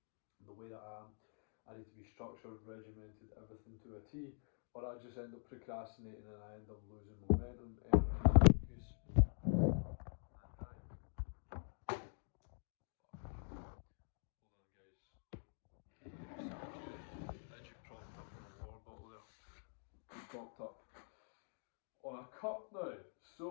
The way that I need to be structured, regimented, everything to a T, or I just end up procrastinating and I end up losing momentum, energy, focus. Hold on, guys. Edgy propped up on the water bottle there. Propped up on a cup now. So,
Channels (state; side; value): silent; right; digital silence